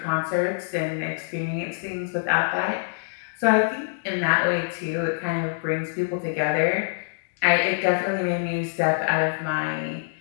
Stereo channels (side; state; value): right; silent; digital silence